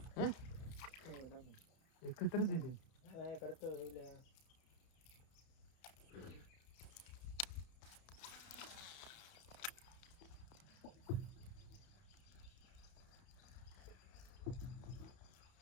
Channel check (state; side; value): late; right; 31 ms